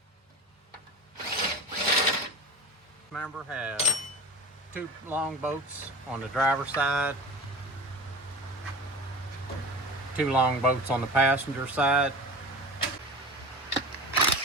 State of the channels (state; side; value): normal; both; correlation 0.32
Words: Remember, have 2 long bolts on the driver's side, 2 long bolts on the passenger side.